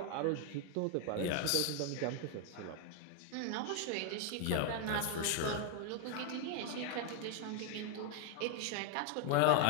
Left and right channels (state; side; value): different; both; correlation 0.00